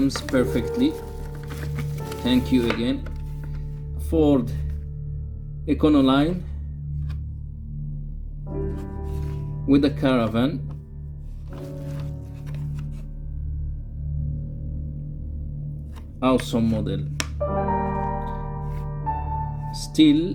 perfectly. Thank you again. Ford Econoline with a caravan. Awesome model.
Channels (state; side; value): identical; both; correlation 1.00